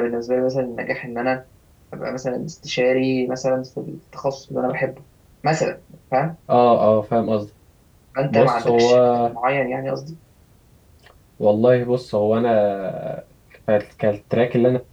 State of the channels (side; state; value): both; identical; correlation 1.00